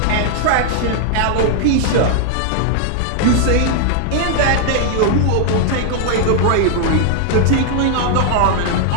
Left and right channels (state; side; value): different; both; correlation 0.00